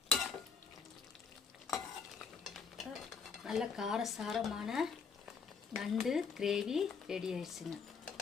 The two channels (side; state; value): right; quieter; 5.7 dB